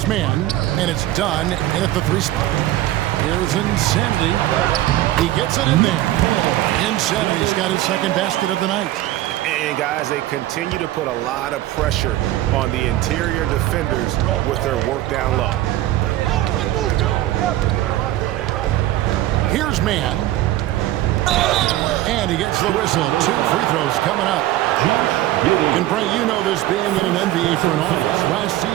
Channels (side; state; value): left; quieter; 15.0 dB